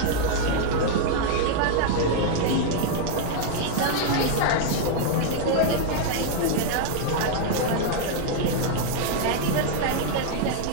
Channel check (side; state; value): both; different; correlation 0.00